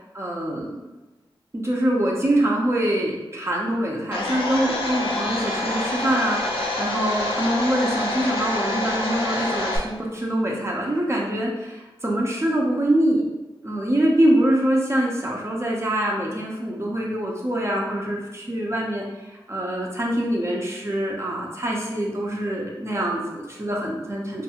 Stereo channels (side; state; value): both; normal; correlation 0.79